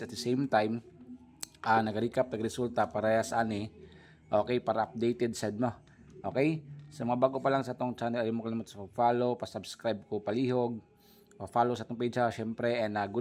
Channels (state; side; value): identical; both; correlation 1.00